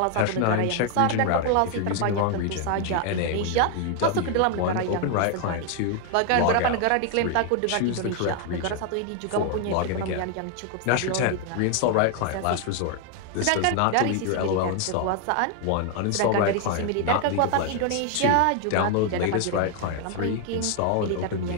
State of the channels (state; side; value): different; both; correlation 0.00